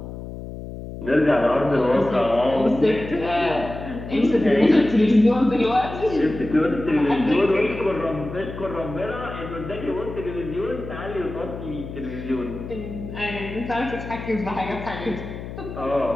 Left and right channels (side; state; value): left; noise; hum, 10 dB below the sound